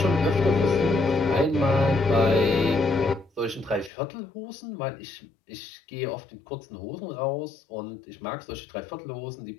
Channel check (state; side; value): drops out; right; at 3.9 s